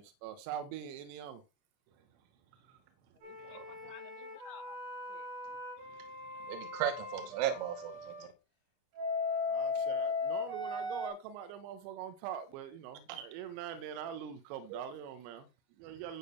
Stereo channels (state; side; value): late; left; 30 ms